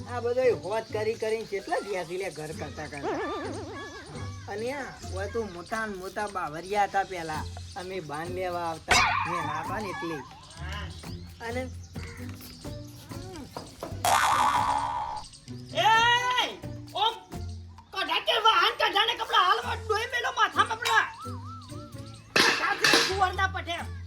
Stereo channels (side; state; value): both; identical; correlation 1.00